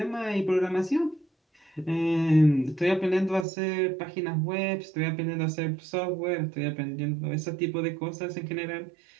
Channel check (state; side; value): drops out; left; at 3.5 s